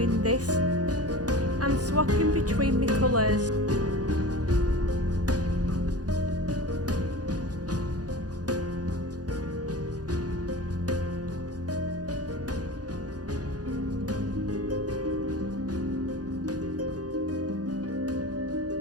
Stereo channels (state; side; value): late; left; 0.68 ms